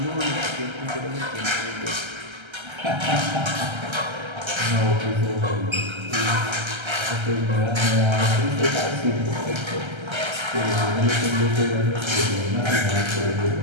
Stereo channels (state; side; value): late; left; 1.3 ms